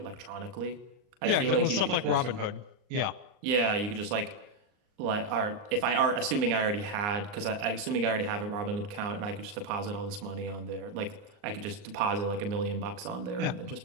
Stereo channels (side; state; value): left; late; 39 ms